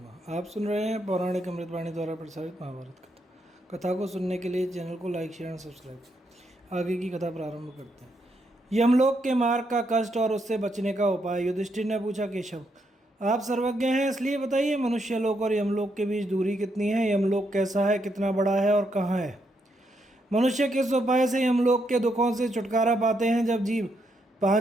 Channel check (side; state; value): both; normal; correlation 0.78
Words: आप सुन रहे हैं पौराणिक अमृतवाणी द्वारा प्रसारित महाभारत कथा। कथा को सुनने के लिए चैनल को लाइक शेयर एंड सब्सक्राइब करें। आगे की कथा प्रारंभ करते हैं। यमलोक के मार्ग का कष्ट और उससे बचने का उपाय। युधिष्ठिर ने पूछा, केशव आप सर्वज्ञ हैं, इसलिए बताइए मनुष्य लोक और यमलोक के बीच दूरी कितनी है? यमलोक कैसा है, कितना बड़ा है और कहाँ है? मनुष्य किस उपाय से यमलोक के दुखों से छुटकारा पाते हैं? जब जीव